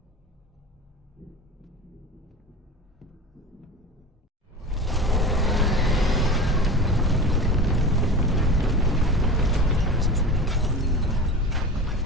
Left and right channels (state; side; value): normal; both; correlation 0.32